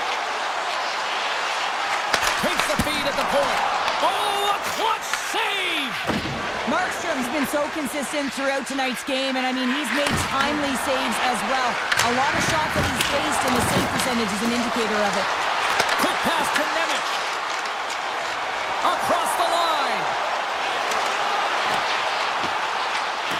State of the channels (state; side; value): identical; both; correlation 1.00